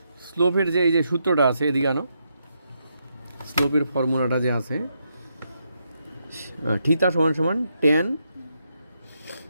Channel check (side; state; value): both; inverted; correlation -0.80